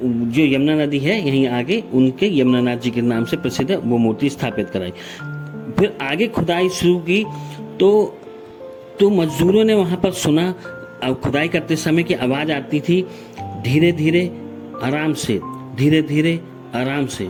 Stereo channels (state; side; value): identical; both; correlation 1.00